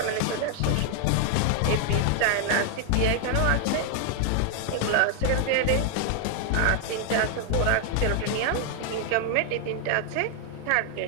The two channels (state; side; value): different; both; correlation 0.00